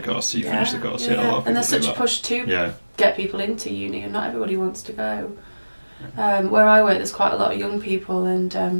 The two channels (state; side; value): inverted; both; correlation -1.00